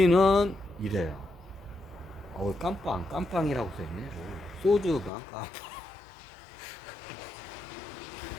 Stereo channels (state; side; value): drops out; right; at 5.1 s